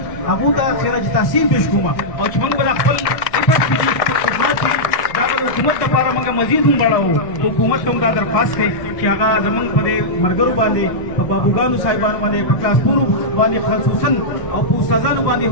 अबू दा खैर तहसीन पेश कुमा और चमंग बला खपल इफत की खिदमत की दाबल हुकूमत का पारा मंगा मजीद हम बड़ा हो तो हुकूमत तुम दा दरखास्त है कि आगा जमंग पदे मरगरु बांधे बाबूगानु साहिबान वाले क्लासपुर वाले खसूसन और उस्तादान वाले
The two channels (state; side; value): late; right; 1.0 ms